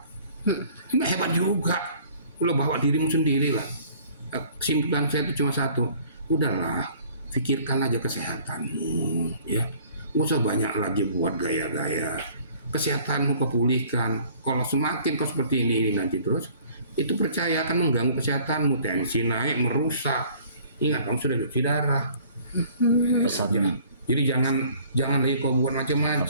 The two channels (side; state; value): both; inverted; correlation -0.54